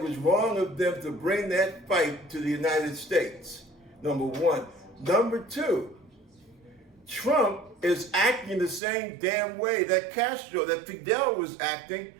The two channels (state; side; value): drops out; left; at 8.8 s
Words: was wrong of them to bring that fight to the United States, number one. Number two, Trump is acting the same damn way that Fidel was acting